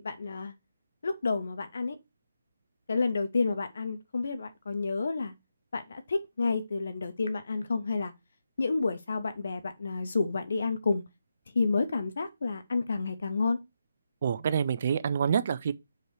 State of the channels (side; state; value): both; inverted; correlation -0.85